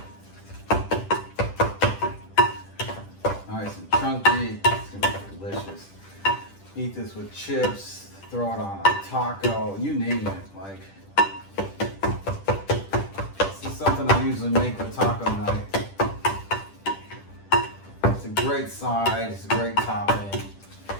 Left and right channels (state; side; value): late; right; 10 ms